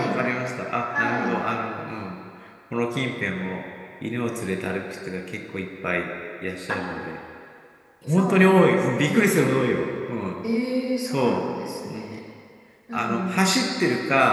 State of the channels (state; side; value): identical; both; correlation 1.00